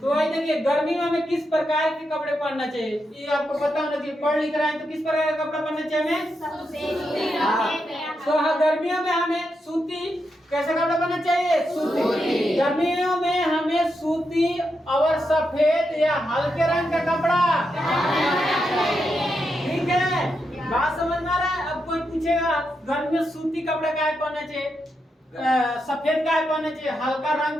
वही देखिए गर्मी में हमें किस प्रकार के कपड़े पहनना चाहिए ये आपको पता होना चाहिए। पढ़ लिख रहा है तो किस प्रकार का कपड़ा पहनना चाहिए हमें? तो हाँ, गर्मियों में हमें सूती कैसा कपड़ा पहनना चाहिए? सूती। गर्मियों में हमें सूती और सफेद या हल्के रंग का कपड़ा, ठीक है? बात समझ में आ रहा है? अब कोई पूछेगा गर्मी में सूती कपड़ा का है पहनना चाहिए, सफेद का है पहनना चाहिए, हल्का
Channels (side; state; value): both; normal; correlation 0.85